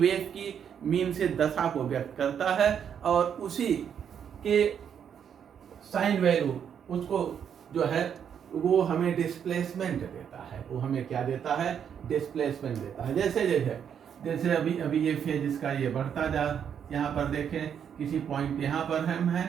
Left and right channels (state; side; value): quieter; left; 8.2 dB